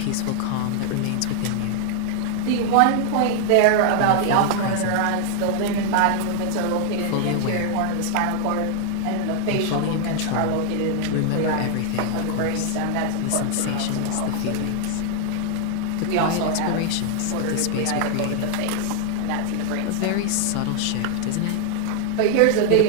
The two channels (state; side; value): different; both; correlation 0.00